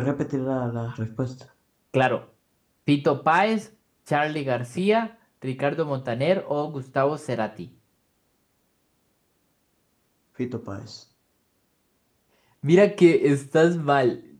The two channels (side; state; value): both; identical; correlation 1.00